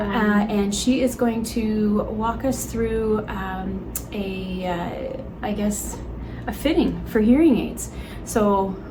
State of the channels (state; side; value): identical; both; correlation 1.00